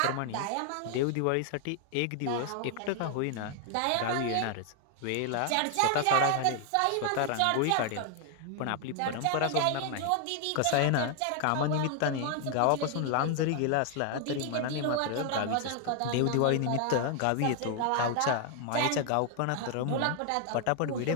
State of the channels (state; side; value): different; both; correlation 0.00